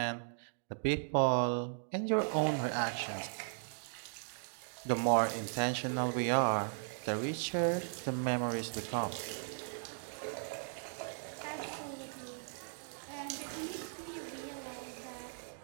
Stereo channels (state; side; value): silent; left; digital silence